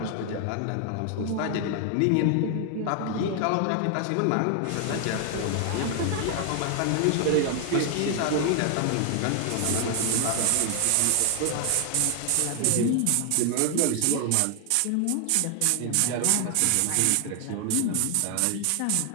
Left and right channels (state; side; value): different; both; correlation 0.00